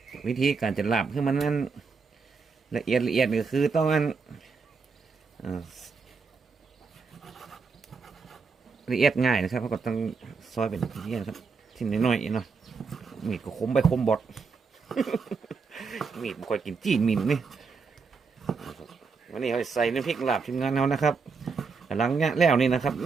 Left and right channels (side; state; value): left; quieter; 4.9 dB